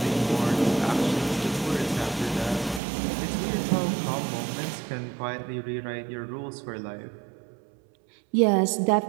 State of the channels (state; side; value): drops out; left; at 2.8 s